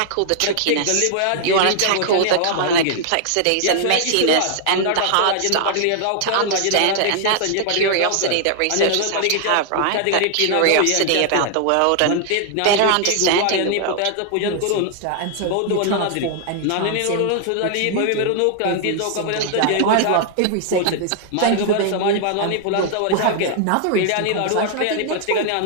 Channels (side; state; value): both; different; correlation 0.00